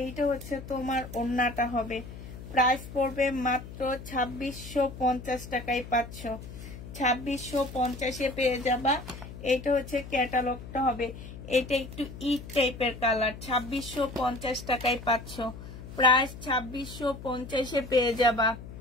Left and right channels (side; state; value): left; noise; hum, 13 dB below the sound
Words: এইটা হচ্ছে তোমার ওড়নাটা হবে। প্রাইস পড়বে মাত্র 2650 টাকায় পাচ্ছ। 2650-এ পেয়ে যাবা। এটা হচ্ছে ক্যাটালগটা হবে। এটা একটু ইট টাইপের কালার। 2650 টাকায় পাচ্ছ। প্রাইস 2650-এ পেয়ে যাবা।